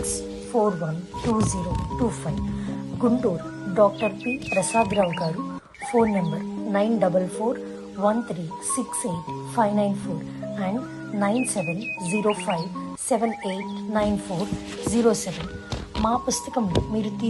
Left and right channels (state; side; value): identical; both; correlation 1.00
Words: Guntur doctor P Prasad Rao garu, phone number 9413685994 and 9705789407. మా పుస్తకంలో మీరు